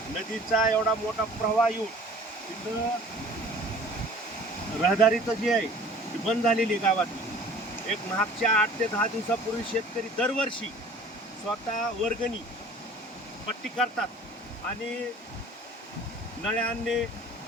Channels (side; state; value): both; normal; correlation 0.48